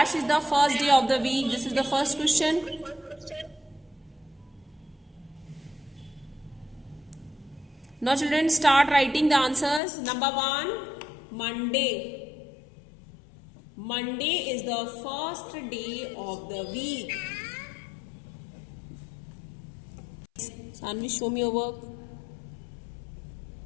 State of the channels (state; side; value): drops out; right; at 9.8 s